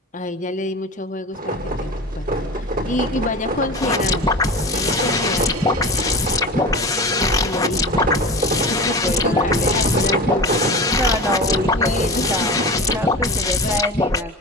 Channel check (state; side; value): normal; both; correlation 0.30